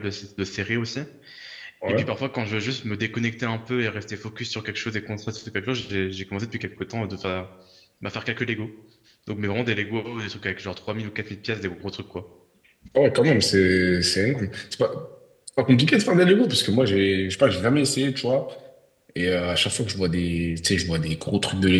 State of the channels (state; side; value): identical; both; correlation 1.00